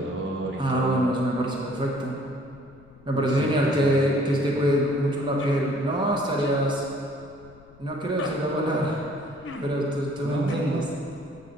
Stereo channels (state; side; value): noise; left; rumble, 24 dB below the sound